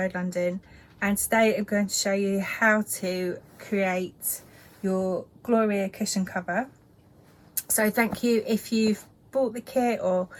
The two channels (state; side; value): identical; both; correlation 1.00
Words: London, and today I'm going to show you how to create your Gloria cushion cover. So thank you if you've bought the kit or